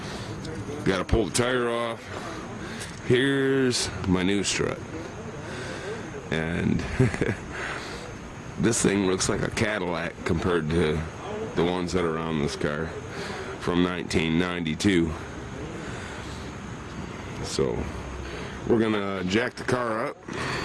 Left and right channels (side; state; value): both; identical; correlation 1.00